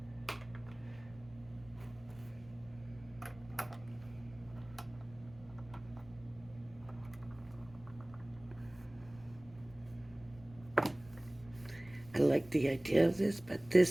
I like the idea of this, but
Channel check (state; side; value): noise; left; rumble, 21 dB below the sound